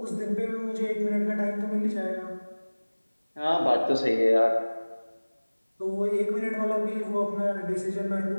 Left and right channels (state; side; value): inverted; both; correlation -1.00